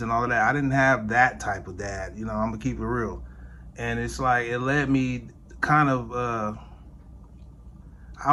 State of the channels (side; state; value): both; identical; correlation 1.00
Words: and all of that. I didn't have that type of dad, I'm gonna keep it real. And it's it led me kind of,